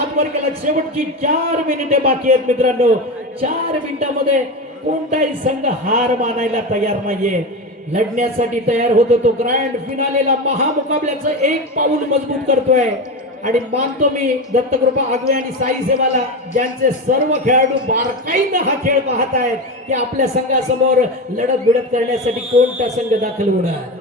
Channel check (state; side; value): normal; both; correlation 0.20